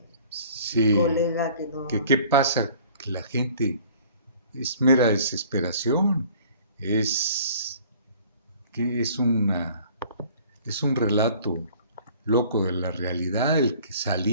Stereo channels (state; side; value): inverted; both; correlation -0.52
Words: sí, colega que no... ¿Qué pasa? Que la gente es mera desesperación, es un relato loco de la realidad, el que